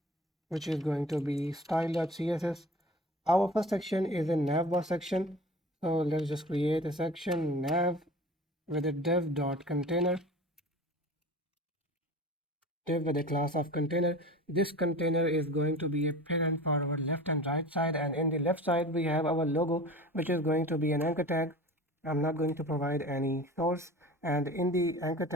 which is going to be style.css. Our first section is a navbar section. So let's just create a section nav with a dev.container. Div with a class of container. This container is going to be a parent for our left and right side, and in the left side we have our logo, which is going to be an anchor tag. I'm not going to provide any source, and in the anchor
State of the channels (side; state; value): both; normal; correlation 0.38